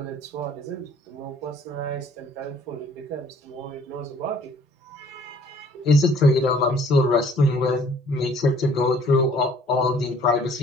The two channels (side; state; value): both; normal; correlation 0.57